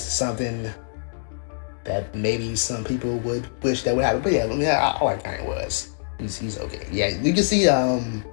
something that maybe some people would wish that would happen. But yeah, I like Kanye West. He's okay. Yeah, you can see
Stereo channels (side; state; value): right; silent; digital silence